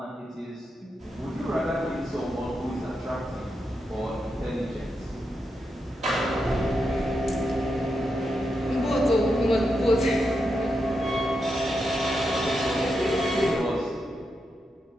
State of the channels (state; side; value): normal; both; correlation 0.86